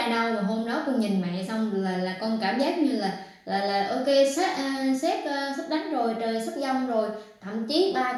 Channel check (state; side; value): identical; both; correlation 1.00